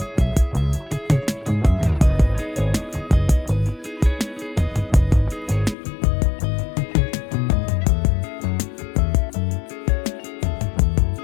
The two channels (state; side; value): drops out; right; at 5.8 s